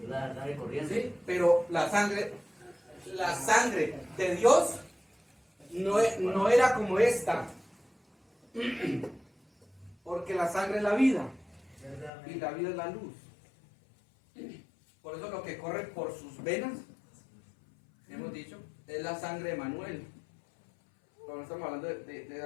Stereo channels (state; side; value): drops out; right; at 12.1 s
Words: La sangre corriente. Sí, pero la sangre de Dios no era como esta. Porque la sangre es la vida. Y la vida es la luz. Por eso lo que corre por sus venas, hemos dicho, es la sangre de Manuel. Pero no estamos hablando de